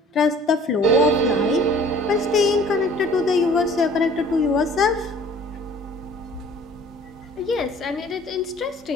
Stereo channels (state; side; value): normal; both; correlation 0.50